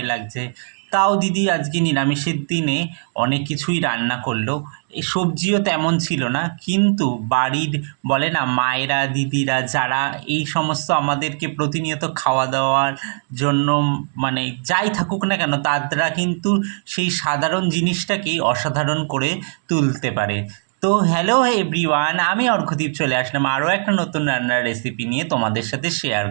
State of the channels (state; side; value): silent; left; digital silence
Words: লাগছে। তাও দিদি আজকে নিরামিষের দিনে অনেক কিছুই রান্না করলো। এই সবজিও তেমন ছিল না, কিন্তু বাড়ির বলে না মায়েরা দিদিরা যারা এই সমস্ত আমাদেরকে প্রতিনিয়ত খাওয়া দাওয়ার জন্য যাই থাকুক না কেন, তারা কিন্তু সেই সাধারণ জিনিসটাকেই অসাধারণ করে তুলতে পারে। তো হ্যালো এভরিওয়ান, আমি অর্ঘদীপ চলে আসলাম আরও একটা নতুন রান্নার রেসিপি নিয়ে তোমাদের সাথে শেয়ার